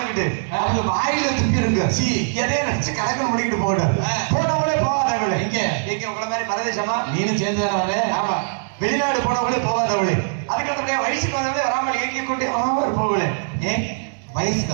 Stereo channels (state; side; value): silent; left; digital silence